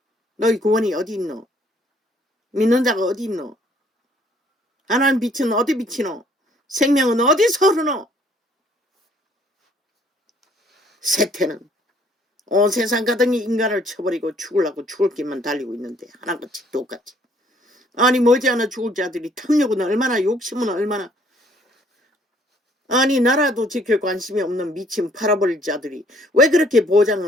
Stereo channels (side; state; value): both; normal; correlation 0.62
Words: 너희 구원이 어디 있노? 믿는 자가 어디 있노? 하나님 빛은 어디 비치노? 생명은 어디서 흐르노? 세태는 온 세상 가득히 인간을 쳐버리고 죽으려고 죽을 길만 달리고 있는데 하나같이 똑같이. 아니 머지않아 죽을 자들이 탐욕은 얼마나, 욕심은 얼마나. 아니 나라도 지킬 관심이 없는 미친 팔아버릴 자들이 왜 그렇게